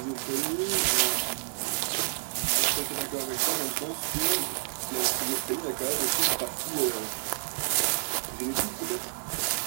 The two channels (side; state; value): left; silent; digital silence